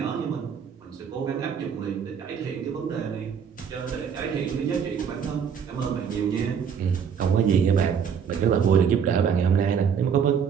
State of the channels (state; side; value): quieter; left; 7.3 dB